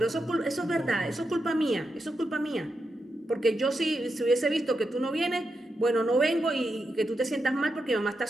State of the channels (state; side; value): normal; both; correlation 0.86